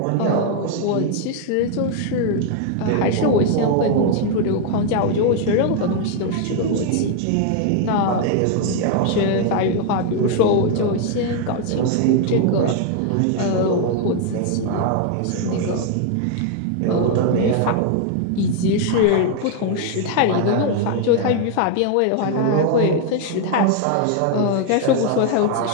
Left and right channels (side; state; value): both; different; correlation 0.00